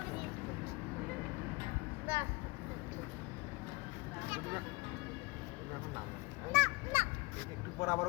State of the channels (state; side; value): quieter; right; 24.5 dB